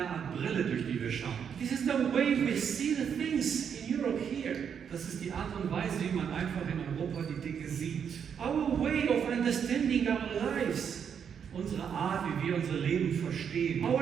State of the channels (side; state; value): left; quieter; 7.5 dB